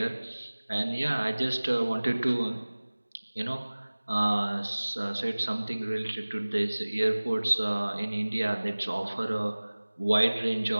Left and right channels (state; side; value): inverted; both; correlation -1.00